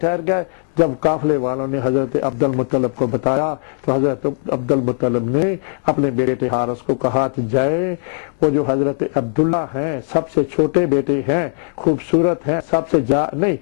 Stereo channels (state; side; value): silent; right; 67 dB below the other